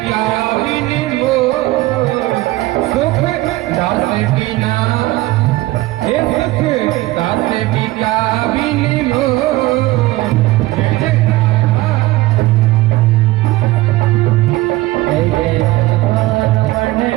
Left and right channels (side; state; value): left; quieter; 18.4 dB